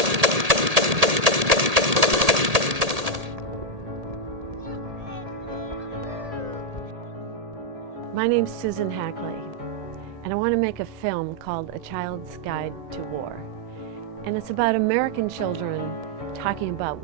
My name's Susan Hackley, and I want to make a film called A Child's Guide to War. And it's about American children talking about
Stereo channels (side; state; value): left; late; 1.8 ms